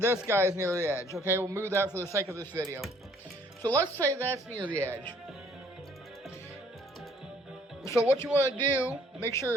guy is near the edge. Okay, we'll move that for the sake of this video. So let's say that's near the edge. So what you want to do, make sure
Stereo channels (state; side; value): normal; both; correlation 0.61